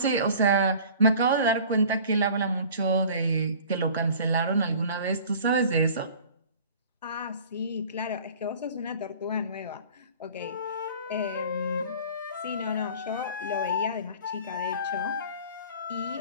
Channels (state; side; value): inverted; both; correlation -0.45